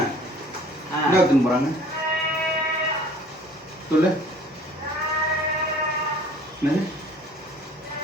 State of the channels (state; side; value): normal; both; correlation 0.50